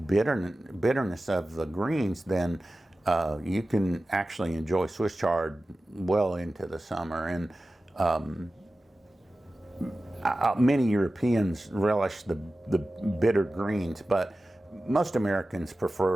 of the greens, then you can actually enjoy Swiss chard well into the summer. And many Europeans relish the bitter greens, but most Americans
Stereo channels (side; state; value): both; normal; correlation 0.95